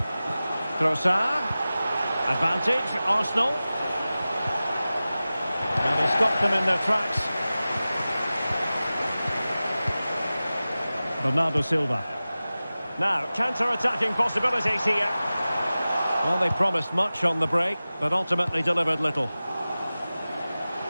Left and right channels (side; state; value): both; inverted; correlation -0.96